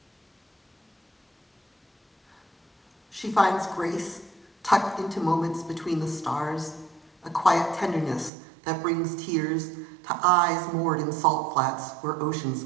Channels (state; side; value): drops out; left; at 8.3 s